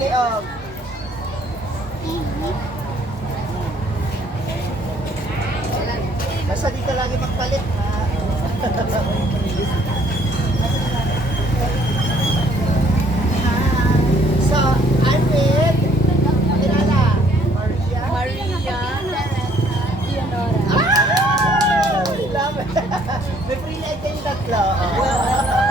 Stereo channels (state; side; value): normal; both; correlation 0.62